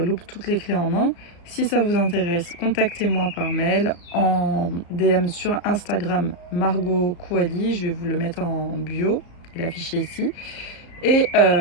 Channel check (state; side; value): late; right; 34 ms